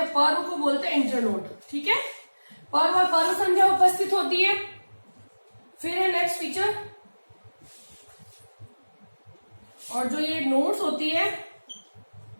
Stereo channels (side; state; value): both; inverted; correlation -1.00